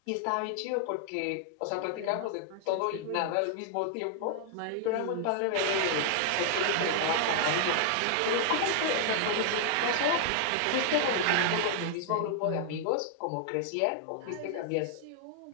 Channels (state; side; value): different; both; correlation 0.00